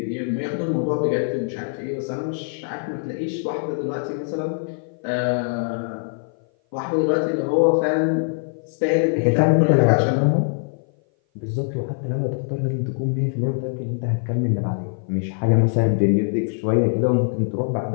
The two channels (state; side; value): silent; right; 57 dB below the other